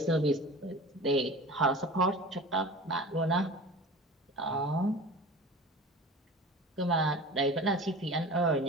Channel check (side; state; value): both; normal; correlation 0.36